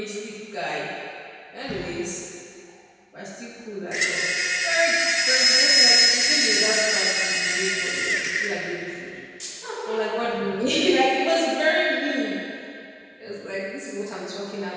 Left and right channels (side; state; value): both; identical; correlation 1.00